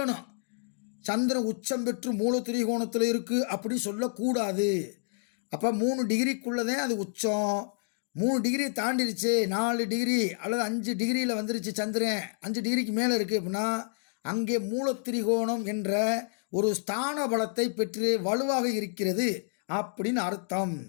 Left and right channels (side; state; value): right; silent; digital silence